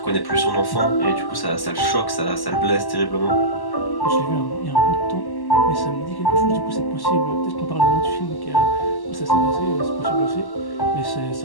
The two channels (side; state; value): right; late; 1.1 ms